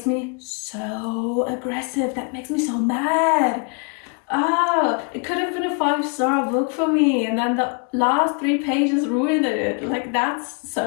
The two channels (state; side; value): quieter; right; 36.9 dB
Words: me so aggressive. That makes me so mad. It could have been a 5-star book for me, and then the last 3 pages ruined it. Like, that's